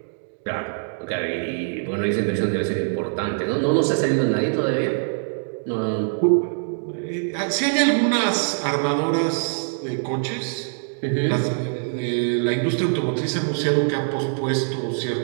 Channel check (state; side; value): silent; left; digital silence